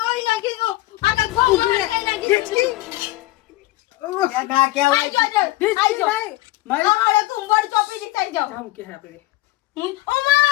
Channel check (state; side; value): quieter; right; 18.2 dB